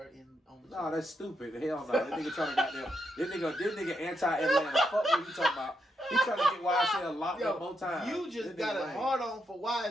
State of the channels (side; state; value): both; normal; correlation 0.81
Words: on the show. No, that's stupid. Hell no. That nigga trying to goddamn. This nigga anti-Atlanta. Fuck what you talking about. He trying to get YSL locked up more times. You just This got nigga a lame. hard on for